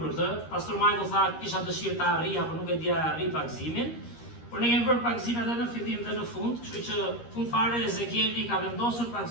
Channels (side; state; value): right; late; 13 ms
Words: për këtë. Pastor Michael tha kisha dëshirë ta arrija, por nuk e dija arri pagëzimin. Por ne kemi bërë pagëzim edhe në fillim dhe në fund, kështu që fund fare Ezekieli ka vendosur